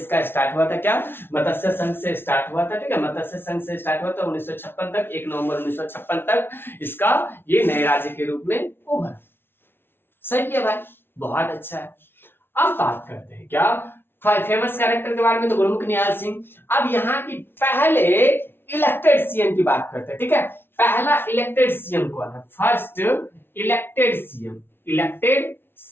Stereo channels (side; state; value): right; late; 0.11 ms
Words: स्टार्ट हुआ था। क्या? मत्स्य संघ से स्टार्ट हुआ था। ठीक है, मत्स्य संघ से स्टार्ट हुआ था 1956 तक, 1 नवंबर 1956 तक इसका ये नए राज्य के रूप में उभरा। सही है भाई, बहुत अच्छा है। अब बात करते हैं क्या फेमस कैरेक्टर के बारे में, तो गुरमुख निहाल सिंह। अब यहाँ की पहले इलेक्टेड सीएम की बात करते हैं। ठीक है, पहला इलेक्टेड सीएम कौन है? First elected CM, elected